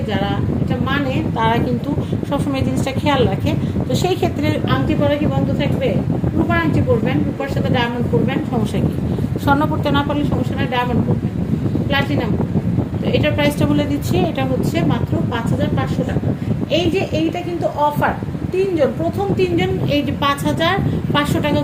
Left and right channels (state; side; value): identical; both; correlation 1.00